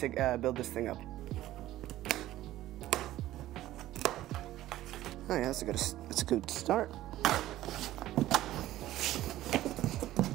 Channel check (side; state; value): left; quieter; 14.8 dB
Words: build this thing up. Oh yeah, that's a good start.